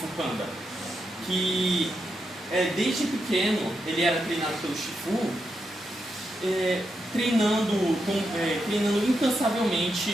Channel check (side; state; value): both; normal; correlation 0.84